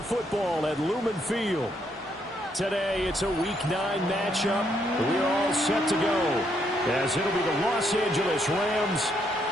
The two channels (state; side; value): normal; both; correlation 0.74